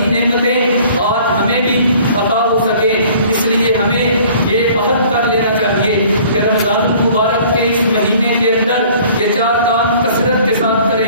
نعمتیں آج ہمیں بھی عطا ہو سکے۔ اس لیے ہمیں یہ عہد کر لینا چاہیے کہ رمضان المبارک کے اس مہینے کے اندر یہ 4 کام کثرت کے ساتھ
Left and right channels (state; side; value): inverted; both; correlation -0.53